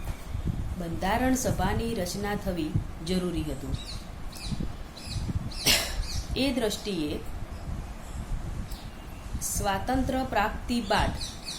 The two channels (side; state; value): both; identical; correlation 1.00